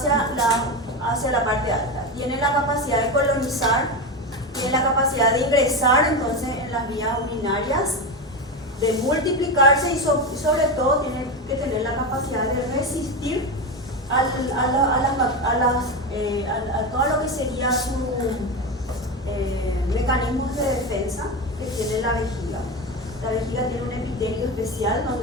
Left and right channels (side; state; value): both; normal; correlation 0.18